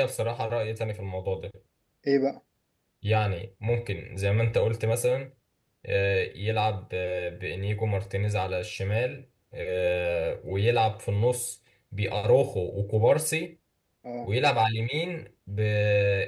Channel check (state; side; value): identical; both; correlation 1.00